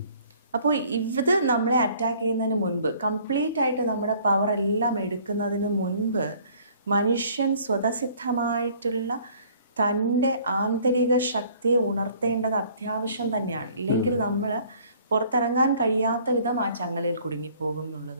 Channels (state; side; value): inverted; both; correlation -0.56